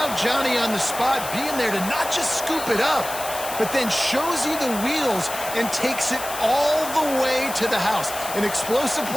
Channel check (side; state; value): left; noise; hiss, 9 dB below the sound